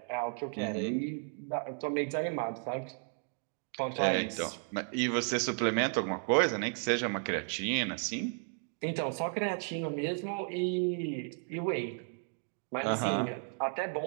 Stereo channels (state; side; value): silent; left; 55 dB below the other